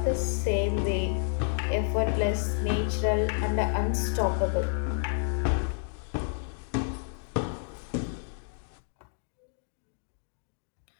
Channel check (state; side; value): silent; right; digital silence